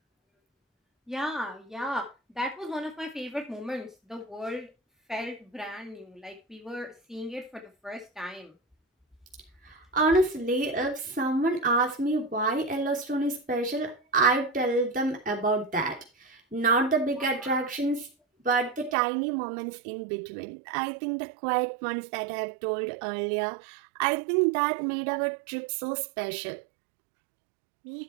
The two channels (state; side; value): drops out; left; at 18.9 s